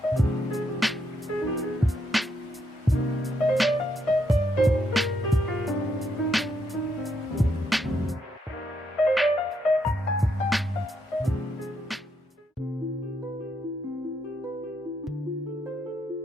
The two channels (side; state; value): both; normal; correlation 0.77